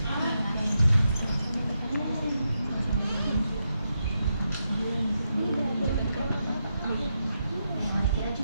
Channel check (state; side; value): inverted; both; correlation -0.84